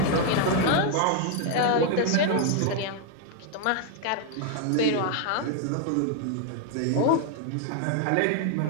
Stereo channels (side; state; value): both; different; correlation 0.00